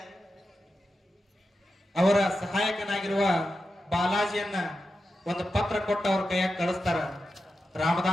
ಅವರ ಸಹಾಯಕನಾಗಿರುವ ಬಾಲಾಜಿಯನ್ನ ಒಂದು ಪತ್ರ ಕೊಟ್ಟು ಅವ್ರ ಕೈಯಾಗ ಕಳಿಸ್ತಾರ,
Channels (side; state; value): both; normal; correlation 0.90